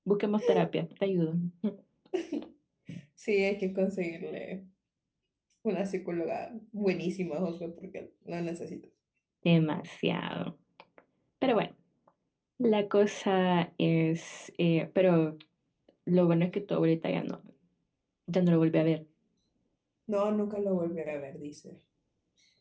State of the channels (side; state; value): both; identical; correlation 1.00